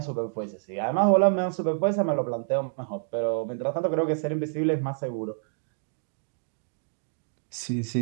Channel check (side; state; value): left; silent; digital silence